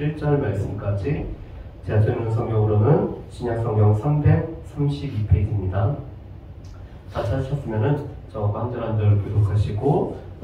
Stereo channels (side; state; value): both; identical; correlation 1.00